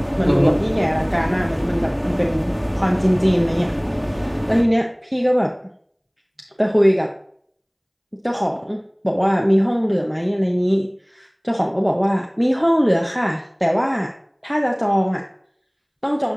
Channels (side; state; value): both; identical; correlation 1.00